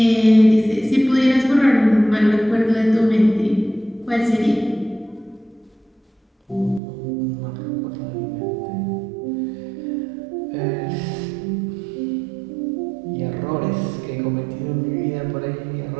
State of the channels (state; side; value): drops out; left; at 6.8 s